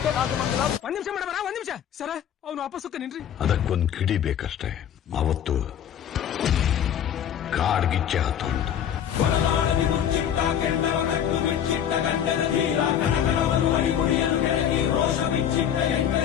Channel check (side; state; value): right; quieter; 9.5 dB